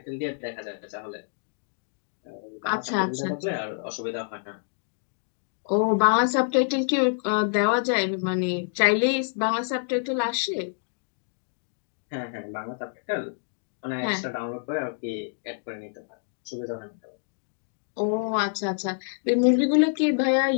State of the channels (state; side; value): silent; right; digital silence